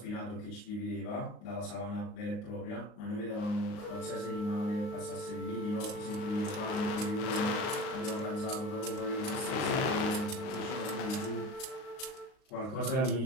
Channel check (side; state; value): right; late; 38 ms